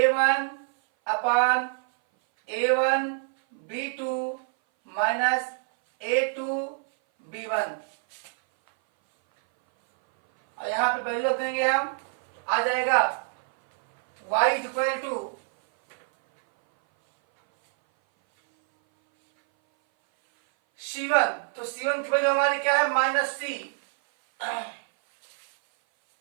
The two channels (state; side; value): silent; left; 58 dB below the other